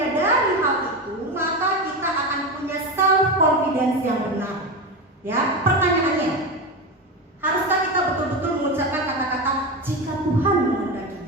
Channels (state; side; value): normal; both; correlation 0.19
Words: hal itu, maka kita akan punya self confidence yang benar. Ya, pertanyaannya, haruskah kita betul-betul mengucapkan kata-kata jika Tuhan